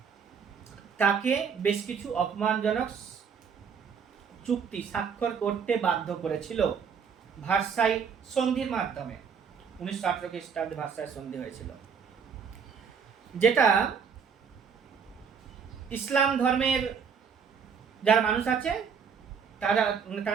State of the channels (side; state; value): left; quieter; 6.6 dB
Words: তাকে বেশ কিছু অপমানজনক চুক্তি স্বাক্ষর করতে বাধ্য করেছিল ভার্সাই সন্ধির মাধ্যমে। 1918 খ্রিস্টাব্দে ভার্সাই সন্ধি হয়েছিল, যেটা ইসলাম ধর্মের যারা মানুষ আছে